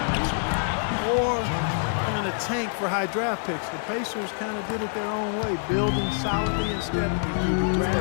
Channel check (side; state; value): right; silent; digital silence